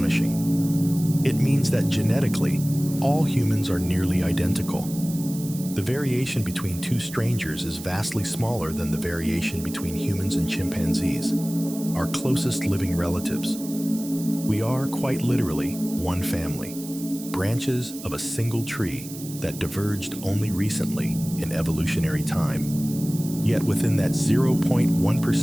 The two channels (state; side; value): noise; right; hiss, 14 dB below the sound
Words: It means that genetically, all humans are nearly identical. The variation between two strangers is vastly smaller than the variation between humans and chimpanzees, our closest living relatives. We are, quite literally, one family, branches of a single tree that diverged only recently in evolutionary time. Yet within that